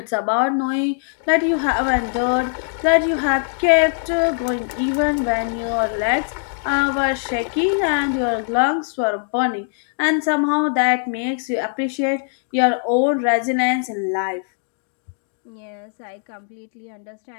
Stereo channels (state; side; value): silent; right; digital silence